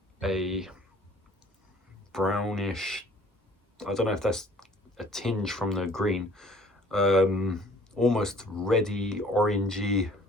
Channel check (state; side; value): normal; both; correlation 0.54